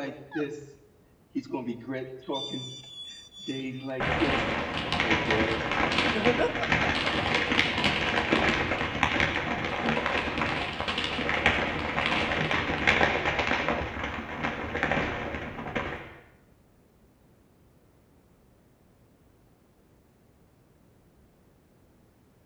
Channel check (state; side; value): identical; both; correlation 1.00